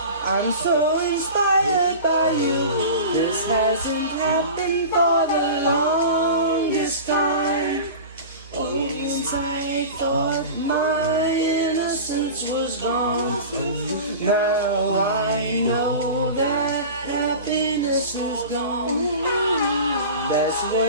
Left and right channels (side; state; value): both; inverted; correlation -0.34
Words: I'm so inspired by you. This hasn't happened for the longest time. Once I thought my innocence was gone. Now I know that happiness is gone. That's